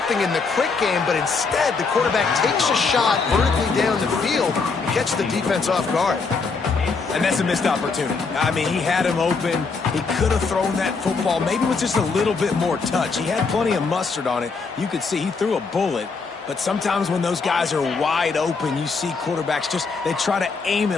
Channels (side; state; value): right; quieter; 4.6 dB